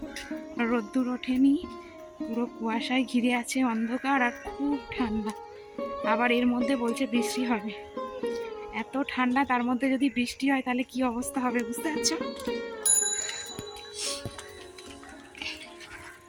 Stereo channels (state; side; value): identical; both; correlation 1.00